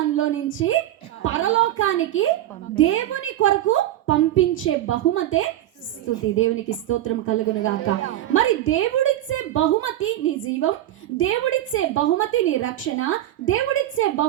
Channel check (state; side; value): quieter; left; 13.3 dB